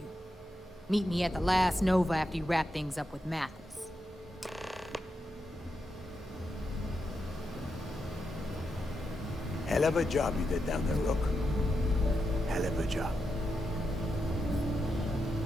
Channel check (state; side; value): normal; both; correlation 0.86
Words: Meet me at the last Nova after you wrap things up with Mathis. Hell of a job you did down there, Rook. Hell of a job.